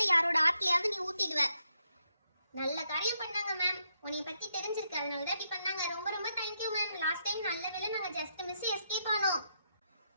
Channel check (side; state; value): both; inverted; correlation -0.79